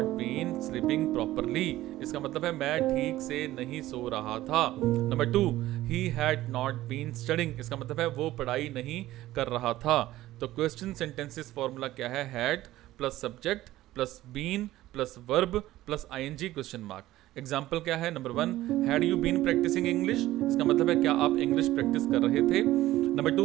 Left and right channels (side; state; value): left; quieter; 15.6 dB